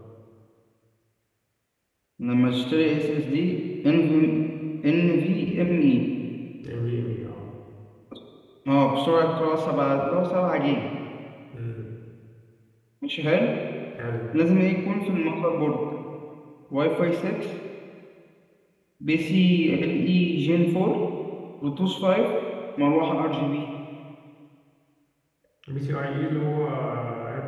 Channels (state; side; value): identical; both; correlation 1.00